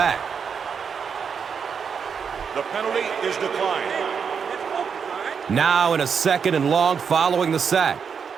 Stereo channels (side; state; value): left; quieter; 6.5 dB